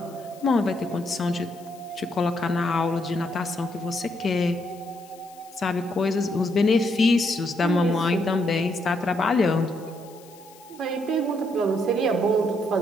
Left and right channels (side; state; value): left; noise; hiss, 24 dB below the sound